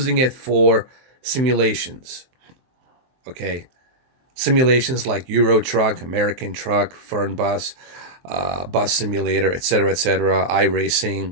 it for simulations, okay? Simulations like Euro Truck, American Truck, Fern Bus, Bus Simulator, etc.,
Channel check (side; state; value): left; late; 23 ms